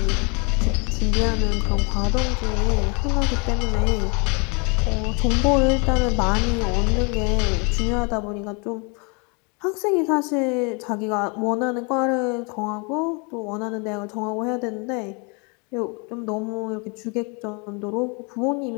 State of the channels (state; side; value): quieter; right; 32.6 dB